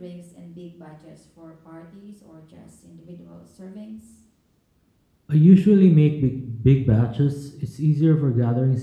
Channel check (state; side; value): identical; both; correlation 1.00